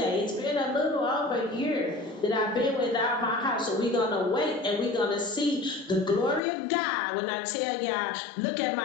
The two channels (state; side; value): drops out; right; at 6.4 s